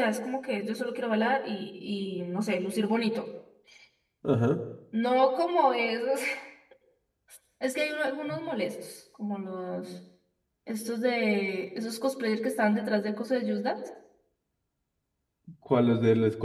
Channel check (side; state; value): both; identical; correlation 1.00